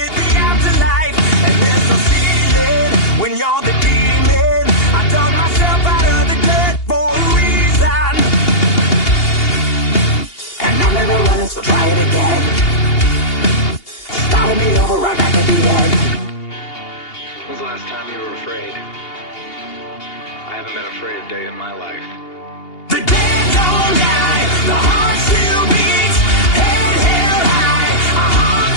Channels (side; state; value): right; late; 2.8 ms